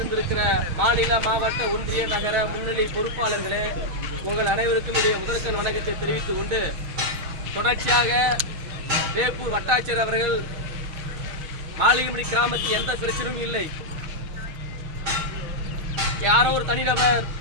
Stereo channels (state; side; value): late; left; 6.5 ms